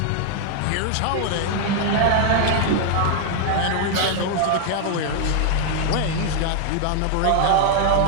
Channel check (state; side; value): different; both; correlation 0.00